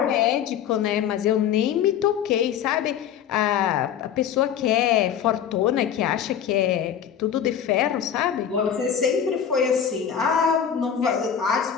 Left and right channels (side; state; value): right; quieter; 8.7 dB